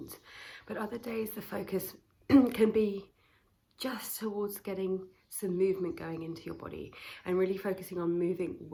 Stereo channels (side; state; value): both; identical; correlation 1.00